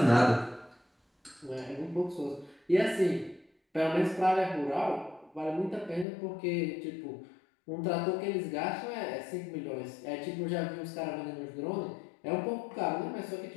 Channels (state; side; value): drops out; right; at 6.1 s